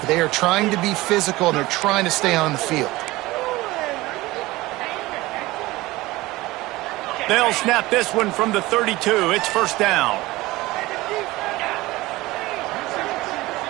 They are trying to be physical, and they're trying to stay on the field. They'll snap this one from the 32. It's first down.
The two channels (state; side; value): quieter; left; 19.4 dB